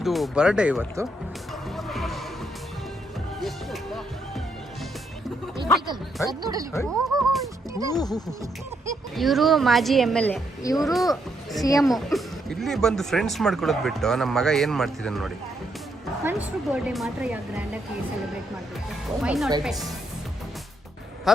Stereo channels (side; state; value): both; normal; correlation 0.76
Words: ಬರ್ಡೇ ಇವತ್ತು. ಇವರು ಮಾಜಿ MLA, ಇವರು CM. ಇಲ್ಲಿ ಬಂದು ಫ್ರೆಂಡ್ಸ್ ಮಾಡ್ಕೊಳ್ಳೋದು ಬಿಟ್ಟು ನಮ್ಮ ಮಗ ಏನು ಮಾಡ್ತಿದ್ದಾನೆ ನೋಡಿ. ಮನುಷ್ಯರು ಬರ್ಡೇ ಮಾತ್ರ ಯಾವ ಗ್ರ್ಯಾಂಡಾಗಿ ಸೆಲೆಬ್ರೇಟ್ ಮಾಡಬೇಕು. Why not pets?